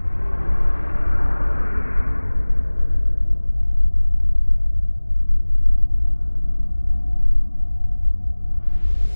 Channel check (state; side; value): inverted; both; correlation -1.00